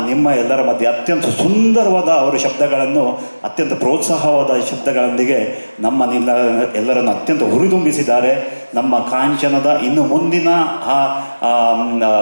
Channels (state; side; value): inverted; both; correlation -1.00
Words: ನಿಮ್ಮ ಎಲ್ಲರ ಮಧ್ಯೆ ಅತ್ಯಂತ ಸುಂದರವಾದ ಅವರ ಶಬ್ದಗಳನ್ನು, ಅತ್ಯಂತ ಪ್ರೋತ್ಸಾಹವಾದ ಶಬ್ದಗಳೊಂದಿಗೆ ಎಲ್ಲರನ್ನು ಅತ್ಯಂತ ಹುರಿದುಂಬಿಸಿದ್ದಾರೆ. ನಮ್ಮ ಕಾಂಚನದ ಇನ್ನು ಮುಂದಿನ